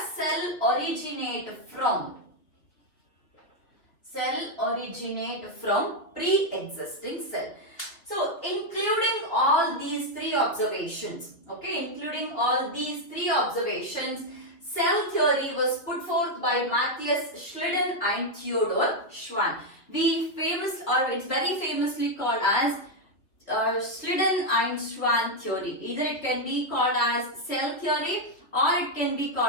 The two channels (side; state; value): right; late; 2.8 ms